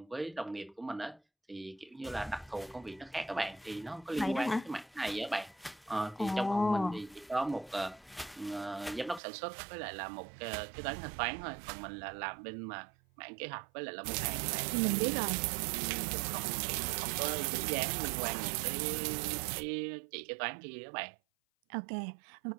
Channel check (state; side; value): drops out; left; at 9.2 s